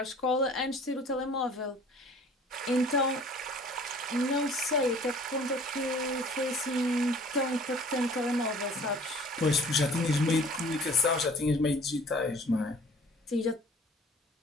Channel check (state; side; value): normal; both; correlation 0.50